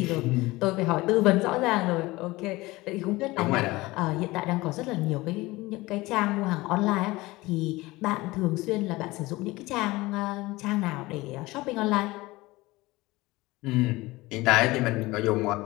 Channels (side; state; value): right; quieter; 20.4 dB